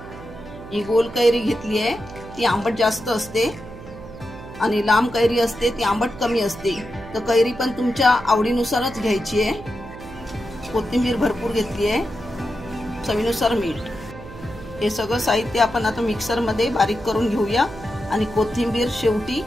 ही गोल कैरी घेतली आहे, ती आंबट जास्त असते आणि लांब कैरी असते ती आंबट कमी असते, तर कैरी पण तुमच्या आवडीनुसारच घ्यायची आहे। कोथिंबीर भरपूर घेतली आहे, चवीनुसार मीठ। हे सगळं साहित्य आपण आता मिक्सर मध्ये बारीक करून घेऊया आणि कोथिंबीर शेवटी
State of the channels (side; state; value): right; noise; hum, 15 dB below the sound